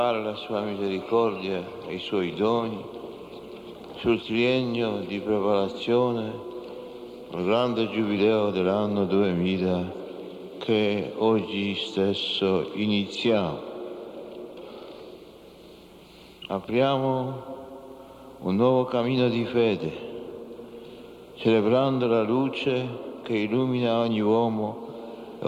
la sua misericordia e i suoi doni sul triennio di preparazione al grande giubileo dell'anno 2000 che oggi stesso iniziamo. Apriamo un nuovo cammino di fede, celebrando la luce che illumina ogni uomo e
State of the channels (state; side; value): identical; both; correlation 1.00